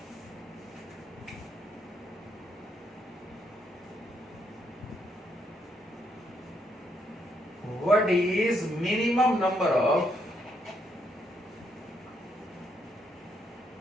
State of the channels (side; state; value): both; normal; correlation 0.76